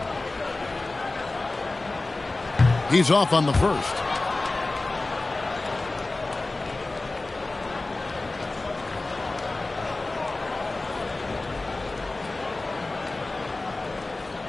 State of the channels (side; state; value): right; quieter; 3.1 dB